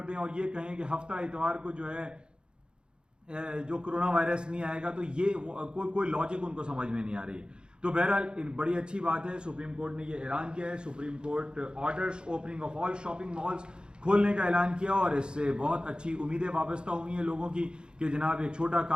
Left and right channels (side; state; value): left; late; 0.050 ms